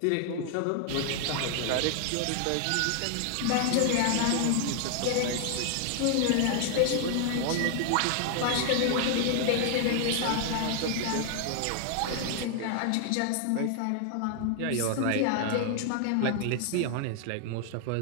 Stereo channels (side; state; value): both; different; correlation 0.00